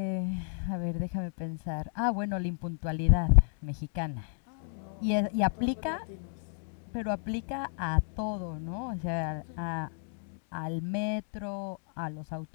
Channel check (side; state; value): right; silent; digital silence